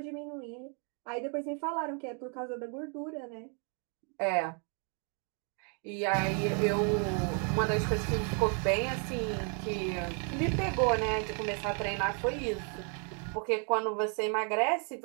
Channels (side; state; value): left; quieter; 39.4 dB